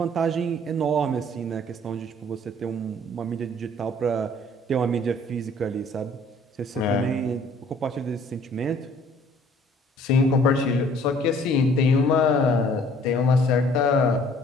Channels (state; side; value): normal; both; correlation 0.56